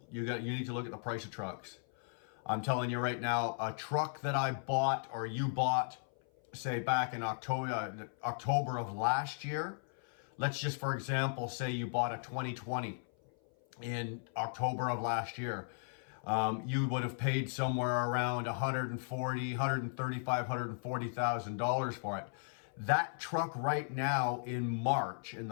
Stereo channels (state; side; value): silent; right; 54 dB below the other